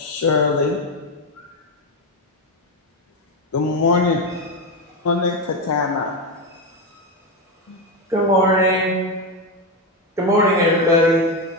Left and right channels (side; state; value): both; normal; correlation 0.11